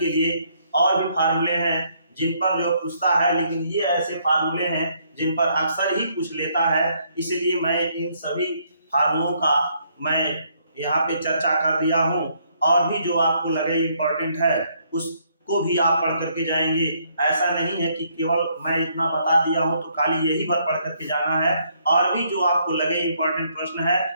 लिए, और भी फार्मूले हैं जिन पर जो पूछता है, लेकिन ये ऐसे फार्मूले हैं जिन पर अक्सर ही पूछ लेता है, इसलिए मैं इन सभी फार्मूलों का मैं यहाँ पे चर्चा कर दिया हूँ। और भी जो आपको लगे इम्पोर्टेंट है उसको भी आप पढ़ करके जाएंगे। ऐसा नहीं है कि केवल मैं इतना बता दिया हूँ तो खाली यही भर पढ़ करके जाना है, और भी जो आपको लगे इम्पोर्टेंट प्रश्न है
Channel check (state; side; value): inverted; both; correlation -0.70